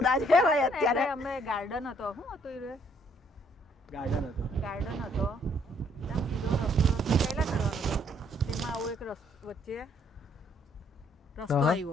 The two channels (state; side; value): normal; both; correlation 0.66